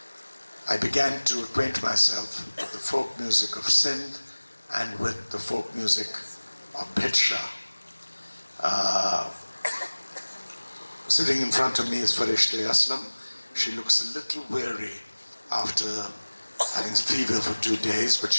I began to acquaint myself with the folk music of Sindh and with the folk music of Bhidsha. Sitting in front of me is Farishte Aslam. She looks a little weary after having fever for 2 days, but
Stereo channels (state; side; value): inverted; both; correlation -1.00